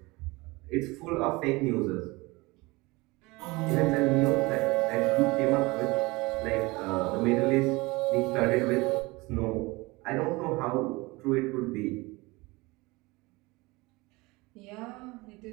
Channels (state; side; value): quieter; left; 23.3 dB